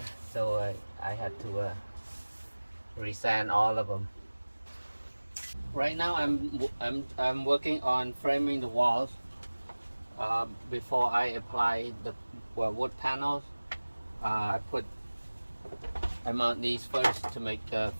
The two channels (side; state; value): both; inverted; correlation -1.00